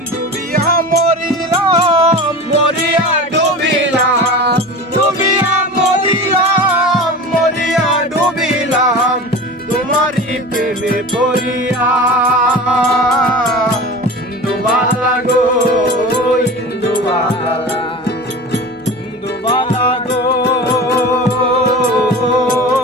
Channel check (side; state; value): both; normal; correlation 0.33